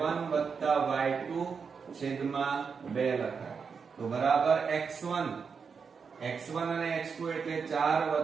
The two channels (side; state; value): left; quieter; 5.8 dB